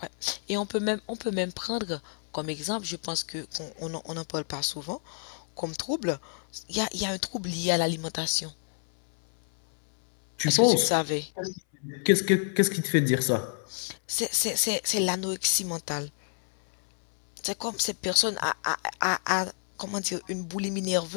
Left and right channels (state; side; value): silent; right; 59 dB below the other